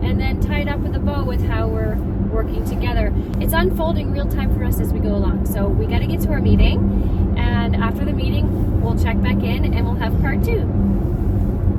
and then tie it up with a bow with how we're working together. It's unfolding real time for us as we go along. So we got to get to our meeting, and after the meeting, we'll check back in and we'll have part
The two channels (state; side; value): identical; both; correlation 1.00